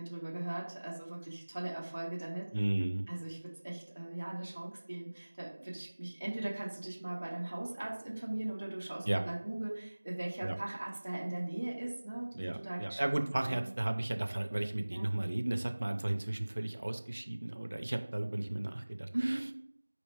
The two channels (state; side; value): inverted; both; correlation -1.00